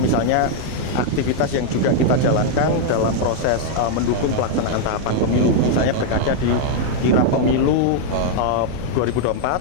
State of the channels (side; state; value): both; different; correlation -0.01